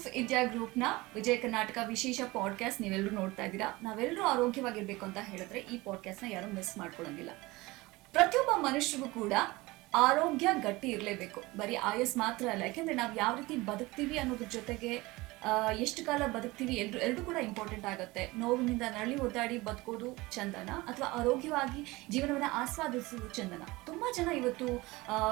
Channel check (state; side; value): quieter; left; 21.5 dB